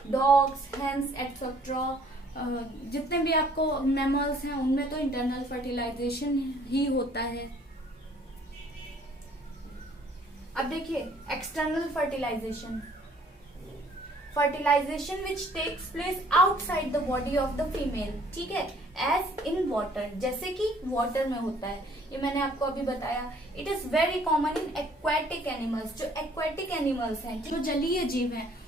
dogs, hens etcetera. जितने भी आपको मैमल्स हैं उनमें तो इंटरनल फर्टिलाइजेशन ही होता है। अब देखिए external fertilisation, fertilisation which takes place outside the body of the female. ठीक है, एज इन वाटर, जैसे कि वाटर में होता है। ये मैंने आपको अभी बताया। It is very common in aquatic animals. जो एक्वेटिक एनिमल्स हैं, जो जलीय जीव हैं,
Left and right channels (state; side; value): normal; both; correlation 0.59